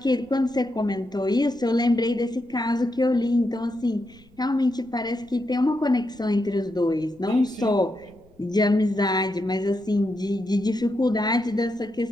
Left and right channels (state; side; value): noise; left; rumble, 29 dB below the sound